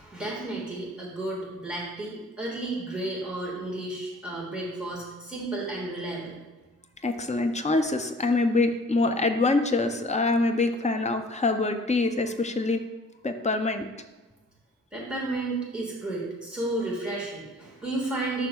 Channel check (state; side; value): normal; both; correlation 0.51